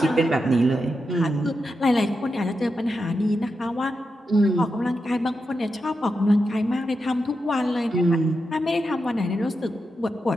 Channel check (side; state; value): both; normal; correlation 0.88